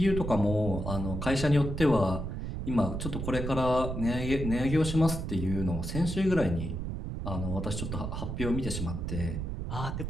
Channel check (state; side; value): noise; right; rumble, 4 dB below the sound